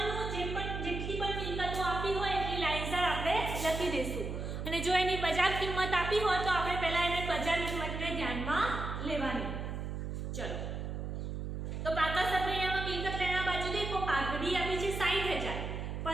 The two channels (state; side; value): noise; right; hum, 4 dB below the sound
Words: જેટલી પણ મિલકતો આપી હોય એટલી લાઈનસર આપણે લખી દઈશું, અને જો એની બજાર કિંમત આપી હોય તો આપણે પહેલા એને બજાર કિંમતને ધ્યાનમાં લેવાની. ચલો, તો પાકા સફેયામાં મિલકત લેના બાજુ દેખો પાઘડી આપી છે 60,000,